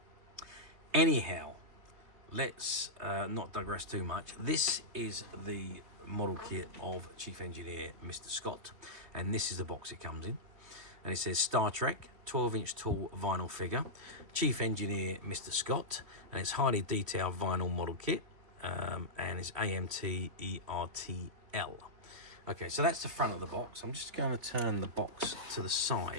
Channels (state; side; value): late; left; 3.1 ms